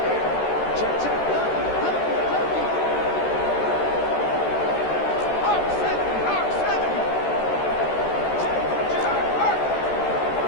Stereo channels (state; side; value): late; right; 13 ms